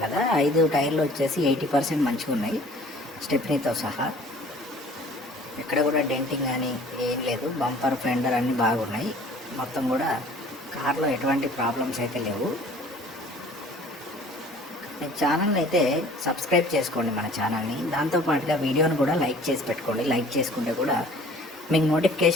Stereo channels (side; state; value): both; normal; correlation 0.50